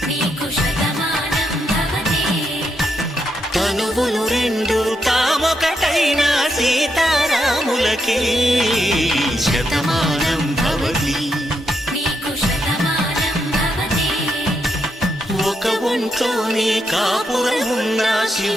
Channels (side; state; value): both; normal; correlation 0.81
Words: నీకు శతమానం భవతి తనువులు రెండు తామొకటైన సీతారాములకి శతమానం భవతి నీకు శతమానం భవతి ఒక ఒంట్లోనే కాపురమున్న